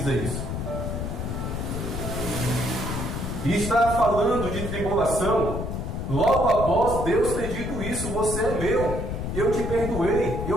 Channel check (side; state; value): left; noise; rumble, 4 dB below the sound